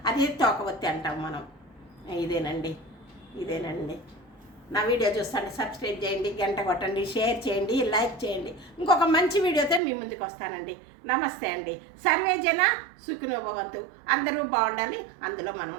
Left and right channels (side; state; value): left; drops out; at 9.8 s